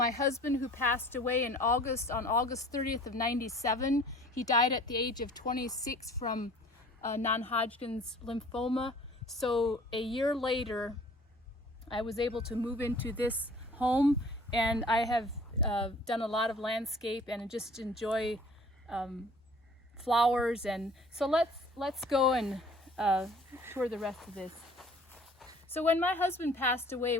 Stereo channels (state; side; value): normal; both; correlation 0.50